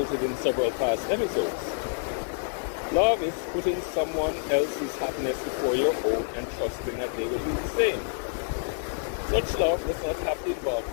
in several past episodes. Love is putting someone else's happiness before your own and trusting that they will do the same. Such love does not have to involve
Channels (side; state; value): right; silent; digital silence